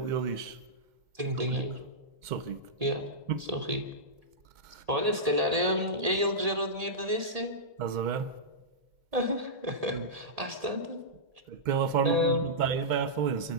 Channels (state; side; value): late; left; 1.8 ms